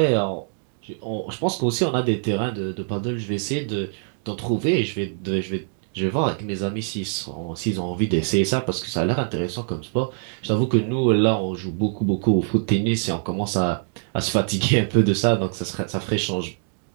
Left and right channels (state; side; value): silent; left; digital silence